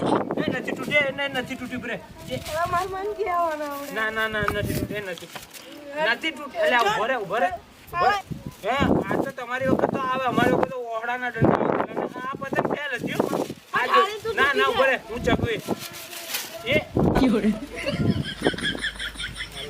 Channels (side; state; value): both; identical; correlation 1.00